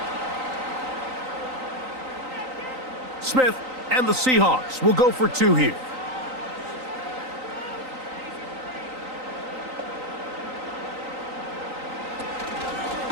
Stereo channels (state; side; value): late; left; 3.9 ms